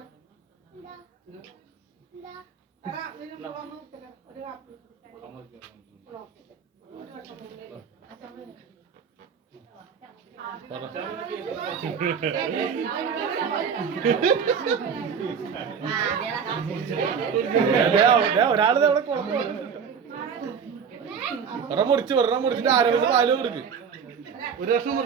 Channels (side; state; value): left; quieter; 6.7 dB